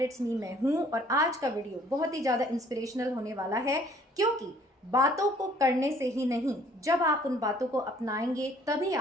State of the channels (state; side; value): normal; both; correlation 0.58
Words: it's me, मैं हूँ। और आज का वीडियो बहुत ही ज़्यादा इंस्पिरेशनल होने वाला है, क्योंकि बातों को करने से ही नहीं, जब आप उन बातों को अपनाएंगे तभी